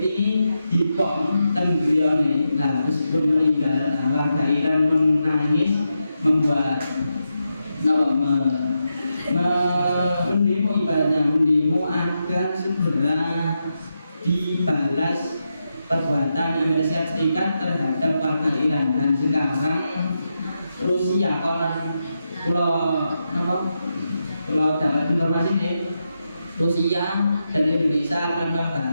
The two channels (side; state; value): both; inverted; correlation -0.86